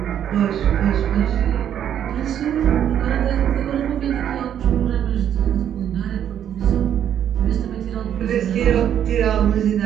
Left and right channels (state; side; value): quieter; left; 9.8 dB